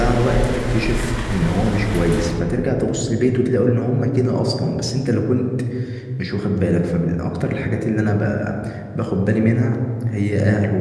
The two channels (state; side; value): identical; both; correlation 1.00